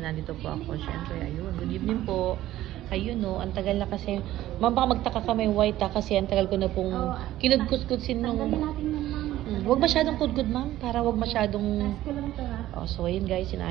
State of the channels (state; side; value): quieter; left; 14.4 dB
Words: po ako. Siyempre, ayun. Good evening po. Ayun no, ang tagal na kasi. Ma'am, baka magtaka ka may white kasi ang tagal ko na pong kinudkus-kudsin nung... Huwag masyadong kudkud ma'am, para huwag masyadong... Oh, so ayun guys,